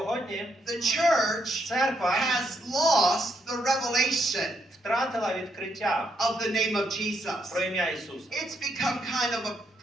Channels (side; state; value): both; normal; correlation 0.77